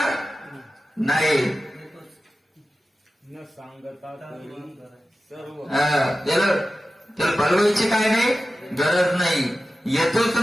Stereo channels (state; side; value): normal; both; correlation 0.94